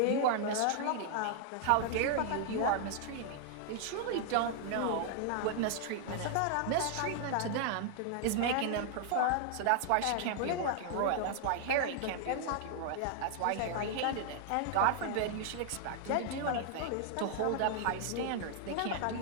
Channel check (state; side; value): different; both; correlation 0.00